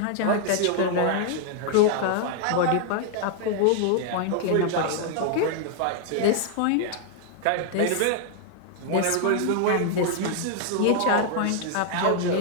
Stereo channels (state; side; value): different; both; correlation 0.00